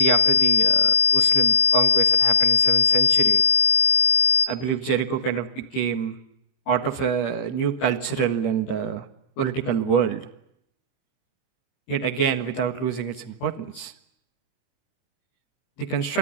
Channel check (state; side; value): late; right; 23 ms